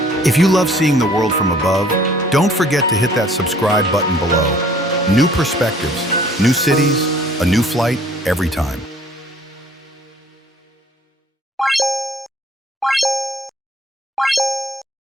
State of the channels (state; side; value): normal; both; correlation 0.56